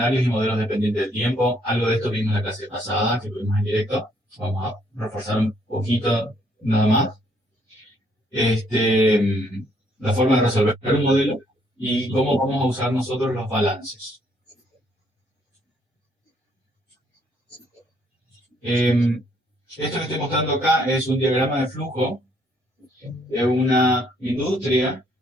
y modelos dependientes del tiempo. Algo de esto vimos en la clase pasada, que tuvimos en directo. Vamos a reforzar un poquito nada más. La forma de resolver un modelo y cómo vamos a usar nosotros los balances. Esto que estoy mostrando acá es un diagrama de flujo de una industria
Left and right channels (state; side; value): normal; both; correlation 0.68